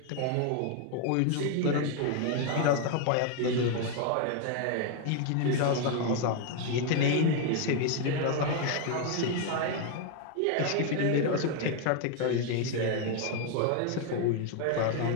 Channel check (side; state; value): both; different; correlation 0.01